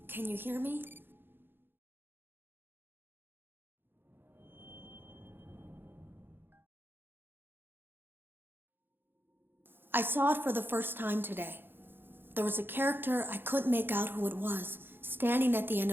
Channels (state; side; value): late; left; 0.10 ms